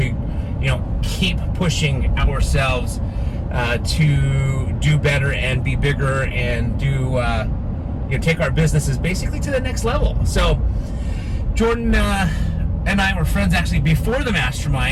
keep pushing ourselves to do better and be bigger and do, take our businesses basically to the next level. So Jordan and I were friends actually before the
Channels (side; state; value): both; identical; correlation 1.00